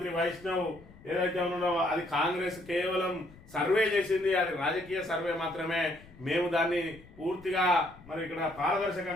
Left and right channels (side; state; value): left; noise; rumble, 22 dB below the sound